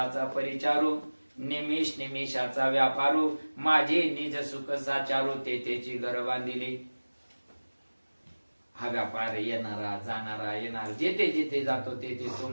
परिचारू, निमिष निमिषाचा व्यापारू, माझे निज सुख साचारू, तेची घर बांधिली. हा व्यापार येणारा जाणारा येणार, जेथे जेथे जातो तेथे तो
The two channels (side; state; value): both; inverted; correlation -1.00